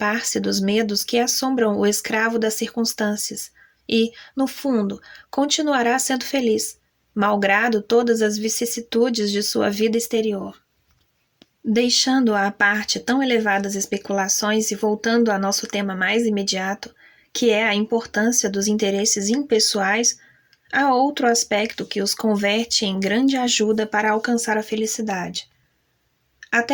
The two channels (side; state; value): both; identical; correlation 1.00